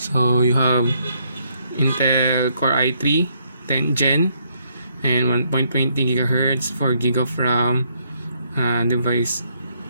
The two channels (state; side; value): inverted; both; correlation -0.72